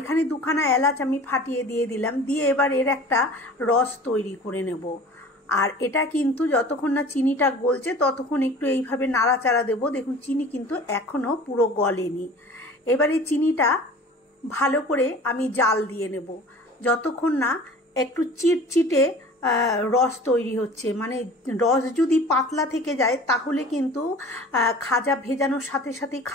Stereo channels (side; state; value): both; normal; correlation 0.43